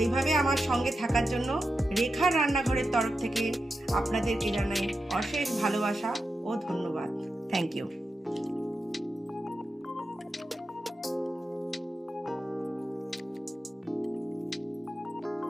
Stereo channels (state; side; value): normal; both; correlation 0.89